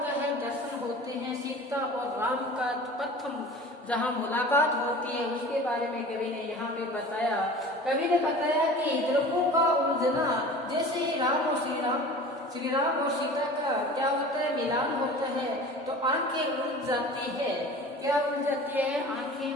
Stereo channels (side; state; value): both; normal; correlation 0.39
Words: है? दर्शन होते हैं। सीता और राम का प्रथम जहाँ मुलाकात होती है उसके बारे में कवि ने यहाँ पे बताया। कवि ने बताया कि हृदयों का उलझना, जैसे ही राम और श्री राम और सीता का क्या होता है? मिलान होता है तो आंखें उलझ जाती है। क्या उलझ जाती है? आंखें